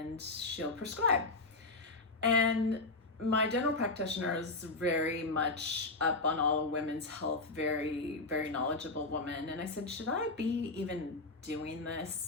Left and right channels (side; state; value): right; quieter; 3.3 dB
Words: she'll prescribe. And my general practitioner is very much up on all women's health, very, very knowledgeable woman. And I said, should I be even doing